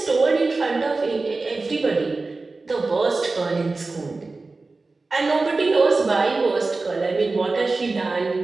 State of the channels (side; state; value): left; quieter; 3.6 dB